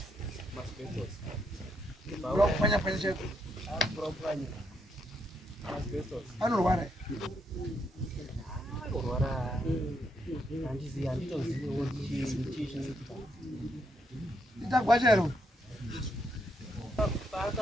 masbestos Kurapanya cheko. kurapanya masbestos Anorwara. Anorwara handizivi handitoziviwo chii chinoitika Itagwachero.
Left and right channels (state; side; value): normal; both; correlation 0.77